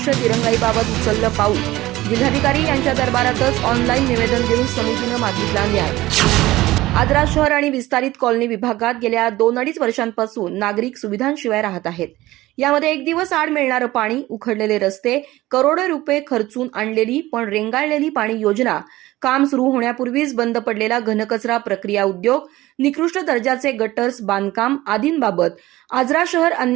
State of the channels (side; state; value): left; quieter; 17.4 dB